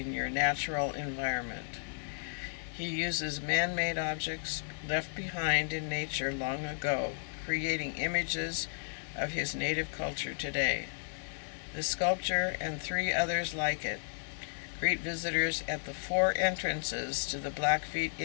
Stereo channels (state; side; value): silent; right; 55 dB below the other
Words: your natural environment. He uses man-made objects left behind in nature long ago, creating images of his native culture today. The sculpture and 3 others like it greet visitors at the 4 entrances to the Blackfeet